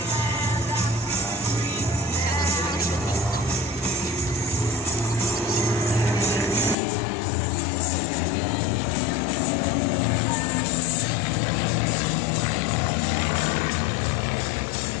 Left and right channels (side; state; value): right; drops out; at 6.8 s